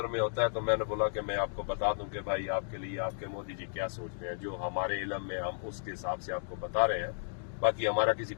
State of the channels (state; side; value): silent; right; digital silence